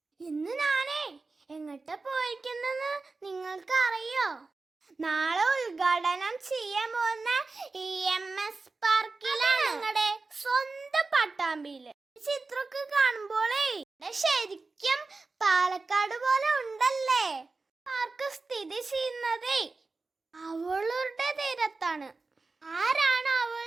ഇന്ന് ഞാനേ എങ്ങോട്ടാ പോയിരിക്കുന്നെന്ന് നിങ്ങൾക്ക് അറിയോ? നാളെ ഉദ്ഘാടനം ചെയ്യാൻ പോകുന്ന EMS പാർക്കിലാണ്, ഞങ്ങളുടെ സ്വന്തം പട്ടാമ്പിയില്. ചിത്രമൊക്കെ കാണുമ്പോളേ ശരിക്കും പാലക്കാട് പോലെ ഉണ്ടല്ലേ. പാർക്ക് സ്ഥിതി ചെയ്യുന്നതേ അവളുടെ തീരത്താണ്. ആരാണ് അവൾ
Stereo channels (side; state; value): left; quieter; 3.8 dB